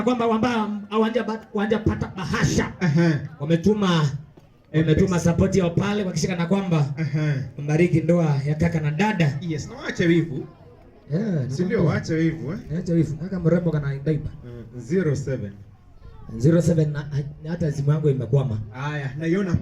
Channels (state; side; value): identical; both; correlation 1.00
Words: kwamba wanja pata bahasha. Wametuma support yao pale kwa kisha kwamba mbariki ndoa ya kaka na dada. Yes, na waache wivu. Si ndio waache wivu Acha wivu. Kaka mrembo kana daipa. 07 na hata simu yangu imekwama. Haya, naiona